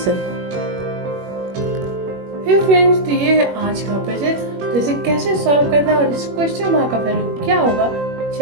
Hey friends, तो ये है आज का पजल। तो इसे कैसे सॉल्व करना है और इस क्वेश्चन मार्क का वैल्यू क्या होगा,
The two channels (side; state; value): left; late; 21 ms